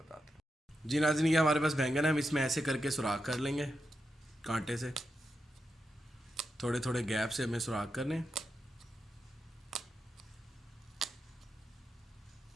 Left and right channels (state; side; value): normal; both; correlation 0.87